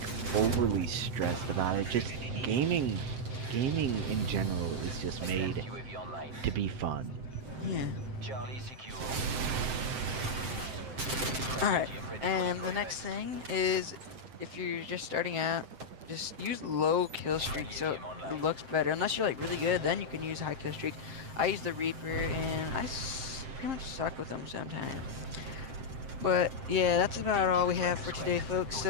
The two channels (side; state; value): left; late; 7.6 ms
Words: overly stressed about it. Just gaming in general is just made UAV online. to be fun. Yeah. Charlie secure. Alright, and the next thing is, if you're just starting out, just use low kill streak so it looks better. Unless you're like really good, then you can use high kill streak. I use the Reaper and pretty much suck with them sometimes. But yeah, that's about all we have for today, folks.